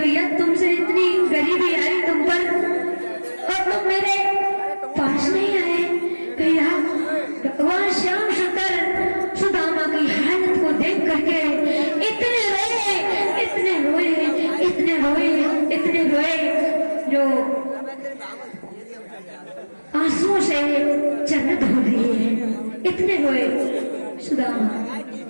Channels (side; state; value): both; inverted; correlation -1.00